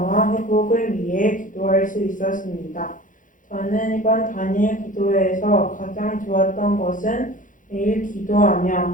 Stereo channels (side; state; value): right; late; 0.38 ms